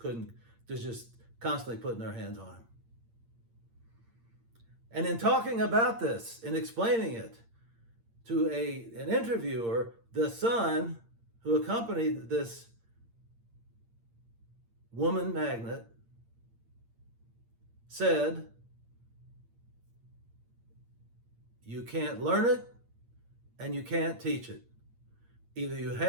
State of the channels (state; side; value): late; left; 8.7 ms